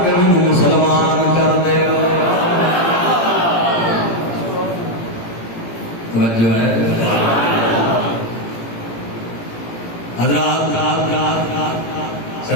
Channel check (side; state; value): right; late; 18 ms